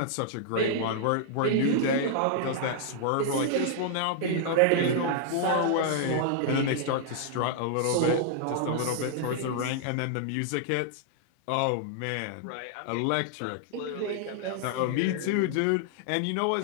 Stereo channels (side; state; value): both; different; correlation -0.01